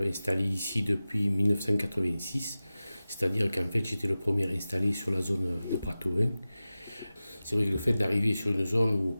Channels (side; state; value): both; inverted; correlation -0.96